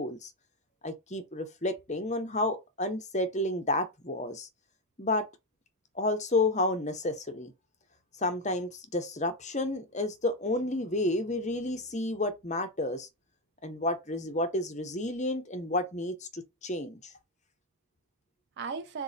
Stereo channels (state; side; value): normal; both; correlation 0.09